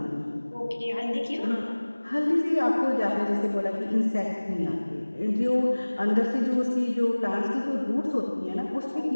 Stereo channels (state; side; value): inverted; both; correlation -1.00